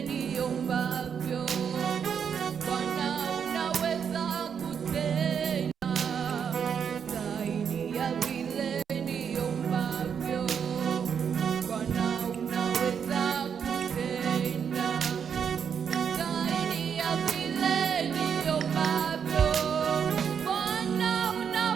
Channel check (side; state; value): left; quieter; 7.3 dB